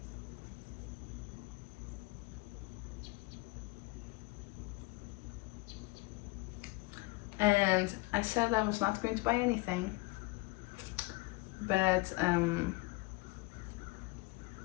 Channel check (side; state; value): right; quieter; 23.9 dB